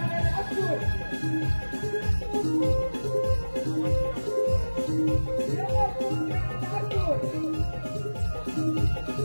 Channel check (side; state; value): both; inverted; correlation -1.00